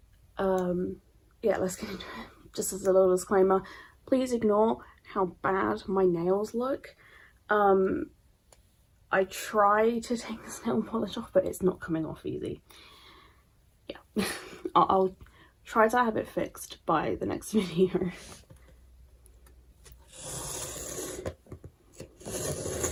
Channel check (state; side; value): identical; both; correlation 1.00